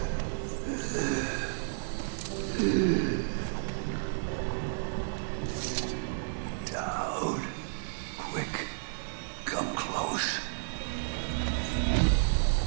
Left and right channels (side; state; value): left; silent; 57 dB below the other